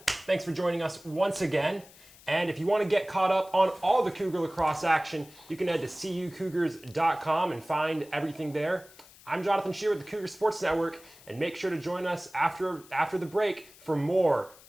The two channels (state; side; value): noise; left; hiss, 23 dB below the sound